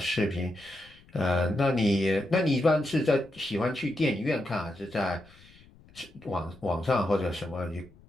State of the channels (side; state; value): left; noise; rumble, 25 dB below the sound